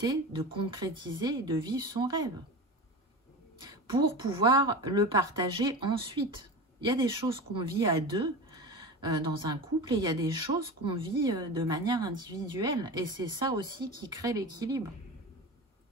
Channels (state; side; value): normal; both; correlation 0.28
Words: de concrétiser et de vivre son rêve. Pour pouvoir le partager ensuite. Il y a des choses qu'on vit à deux dans un couple et il y a des choses qu'on vit de manière individuelle. Et c'est ça aussi qui crée l'équilibre.